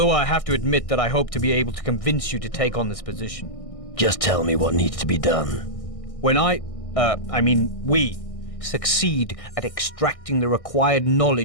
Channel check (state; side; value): late; right; 1.6 ms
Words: I have to admit that I hope to be able to convince you to take on this position. Just tell me what needs to be done. When we succeed at extracting the required